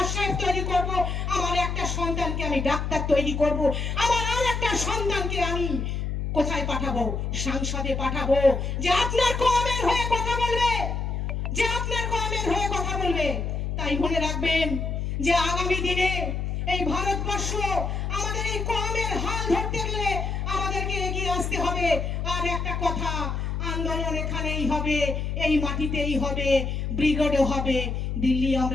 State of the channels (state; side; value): noise; left; hum, 2 dB below the sound